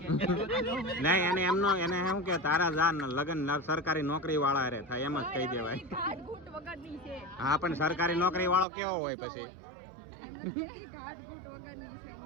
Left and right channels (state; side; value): drops out; left; at 8.7 s